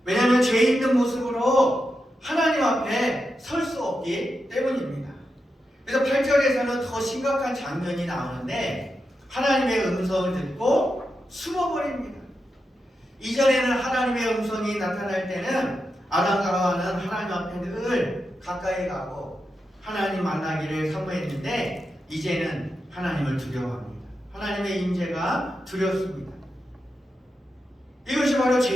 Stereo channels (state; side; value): normal; both; correlation 0.88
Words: 왜냐하면 죄 있는 모습으로 하나님 앞에 설 수 없기 때문입니다. 그래서 8절에서는 더 심각한 장면이 나오는데 하나님의 음성을 듣고 숨어버립니다. 이전에는 하나님의 음성이 나타날 때는 아담과 하와는 하나님 앞에 늘 가까이 가고 하나님 만나기를 사모했는데 이제는 하나님을 두려워합니다. 하나님의 임재가 두렵습니다. 이것이 바로